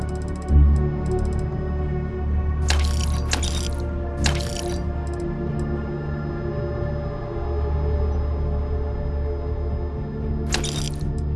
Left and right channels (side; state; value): both; identical; correlation 1.00